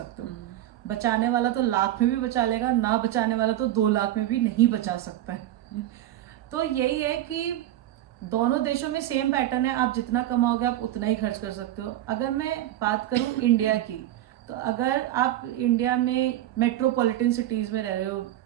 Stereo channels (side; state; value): left; quieter; 13.5 dB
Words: हो। बचाने वाला तो लाख में भी बचा लेगा, ना बचाने वाला तो 2 लाख में भी नहीं बचा सकता है। तो यही है कि दोनों देशों में सेम पैटर्न है, आप जितना कमाओगे आप उतना ही खर्च कर सकते हो। अगर मैं बात करूं इंडिया की, तो अगर आप इंडिया में मेट्रोपॉलिटन सिटीज में रह रहे हो,